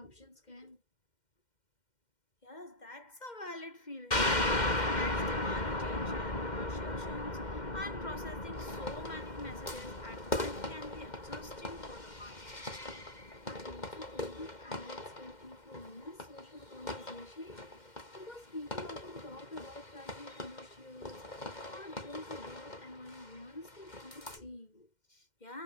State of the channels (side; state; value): right; late; 2.1 ms